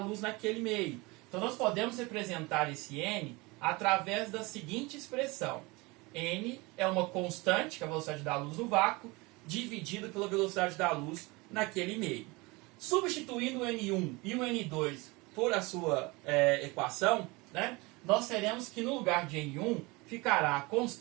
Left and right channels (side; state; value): left; quieter; 24.5 dB